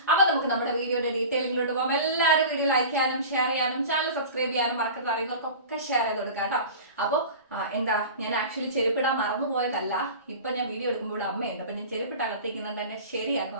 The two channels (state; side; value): inverted; both; correlation -0.36